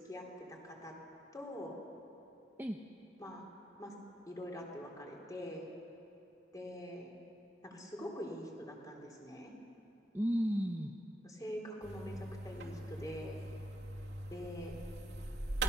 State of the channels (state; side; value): normal; both; correlation 0.81